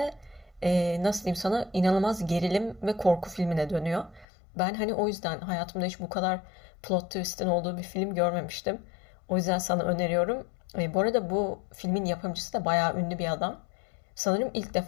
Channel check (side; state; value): right; drops out; at 4.2 s